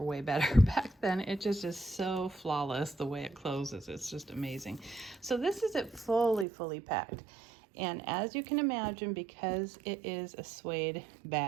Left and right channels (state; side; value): drops out; left; at 6.5 s